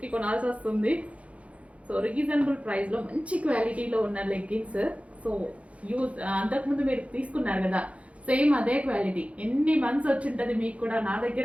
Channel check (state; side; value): late; left; 0.064 ms